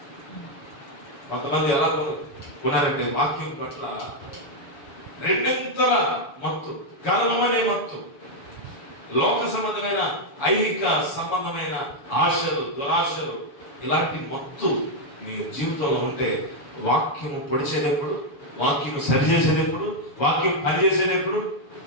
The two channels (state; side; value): late; right; 7.1 ms